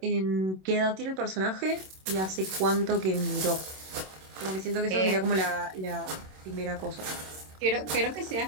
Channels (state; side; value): late; left; 27 ms